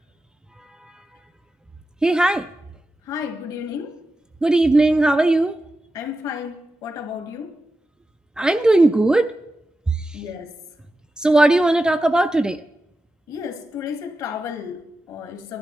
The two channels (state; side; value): normal; both; correlation 0.91